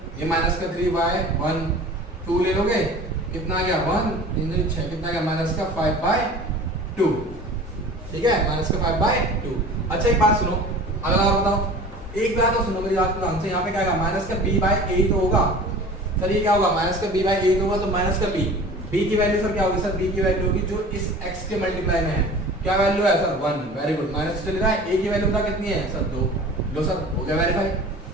ये माइनस का 3/1 2 ले लोगे, कितना आ गया 1 3 6, कितना आ गया माइनस का 5/2, ठीक है माइनस का 5/2। अच्छा एक बात सुनो, अगला और बताओ, एक बात तो सुनो मेरी बात ध्यान से। यहाँ पे क्या आएगा माइनस का b/8 होगा सर, ये क्या होगा माइनस का b/8 होगा, तो माइनस का b की वैल्यू सर क्या होगी सर, b की वैल्यू होगी जो इस x के मल्टीप्लाई में है, क्या वैल्यू है सर 1। वेरी गुड, माइनस चल रहा है, a की वैल्यू पता कितनी है सर 2, लो सर हो गया वेरीफाई,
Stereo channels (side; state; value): both; normal; correlation 0.41